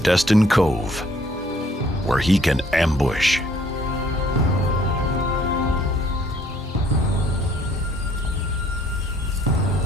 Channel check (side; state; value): both; normal; correlation 0.61